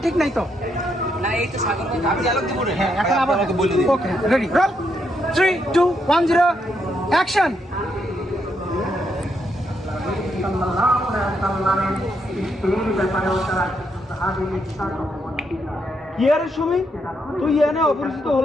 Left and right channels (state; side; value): normal; both; correlation 0.78